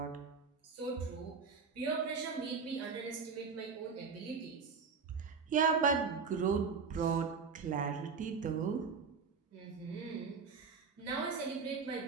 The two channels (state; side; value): quieter; left; 5.4 dB